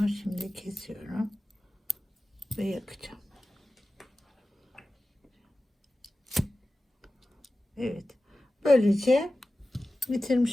şimdi kesiyorum. Ve yakacağım. Evet. Böylece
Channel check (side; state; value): both; normal; correlation 0.94